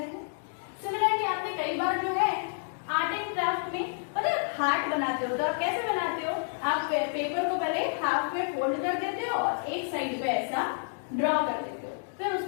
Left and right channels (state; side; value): silent; right; digital silence